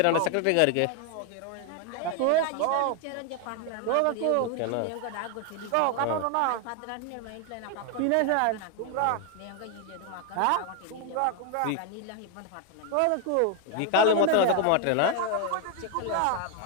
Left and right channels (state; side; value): different; both; correlation 0.01